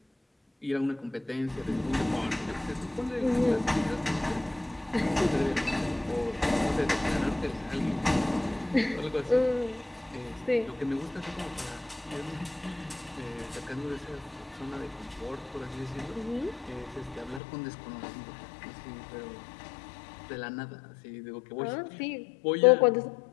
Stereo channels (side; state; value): right; drops out; at 17.4 s